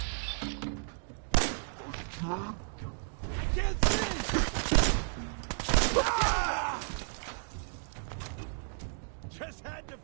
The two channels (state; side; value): silent; left; 56 dB below the other